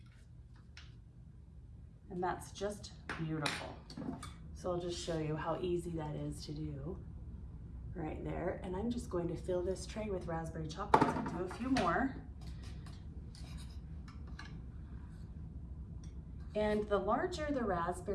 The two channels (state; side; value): identical; both; correlation 1.00